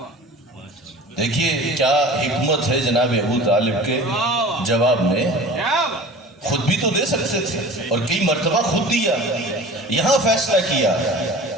دیکھیے کیا حکمت ہے جناب ابو طالب کے جواب میں، خود بھی تو دے سکتے تھے اور کئی مرتبہ خود دیا، یہاں فیصلہ کیا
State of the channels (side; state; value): both; normal; correlation 0.40